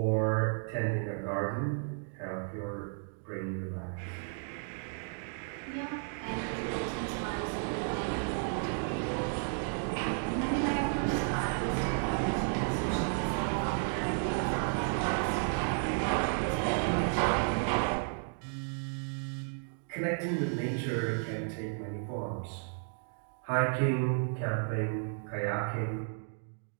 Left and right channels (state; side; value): silent; left; 56 dB below the other